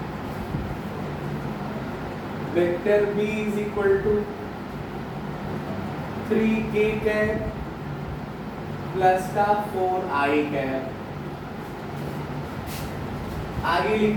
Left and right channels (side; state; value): both; identical; correlation 1.00